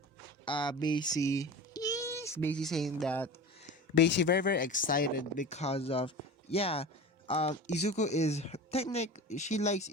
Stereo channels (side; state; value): both; normal; correlation 0.33